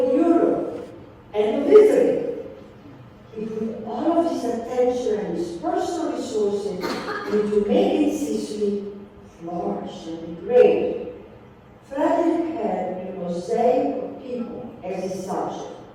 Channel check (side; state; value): both; identical; correlation 1.00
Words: Europe and of Italy, he put all of his attention and his personal resources into making Sicily flourish and be great. Frederick had a mosaic of people as his subject: